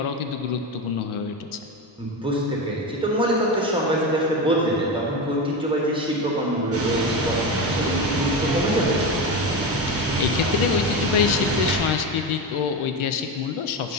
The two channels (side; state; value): both; normal; correlation 0.19